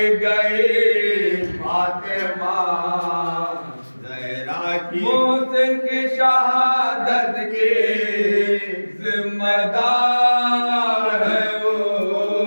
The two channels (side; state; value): both; inverted; correlation -1.00